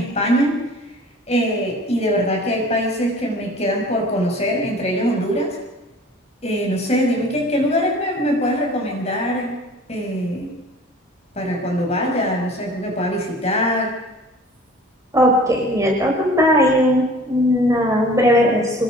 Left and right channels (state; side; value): normal; both; correlation 0.46